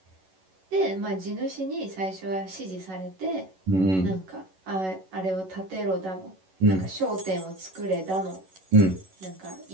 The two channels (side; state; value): left; late; 11 ms